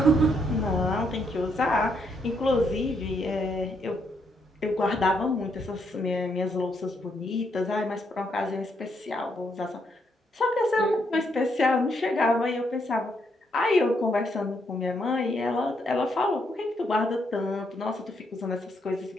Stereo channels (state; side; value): normal; both; correlation 0.76